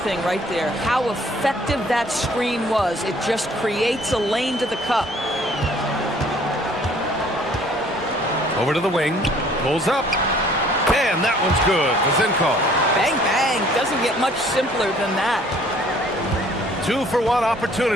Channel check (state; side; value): normal; both; correlation 0.57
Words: right there. How effective that screen was. It just creates a lane to the cup. Over to the wing. Pulls up. And that one's good. Vezenkov. Bang, bang. Doesn't get much simpler than that. 2-for-1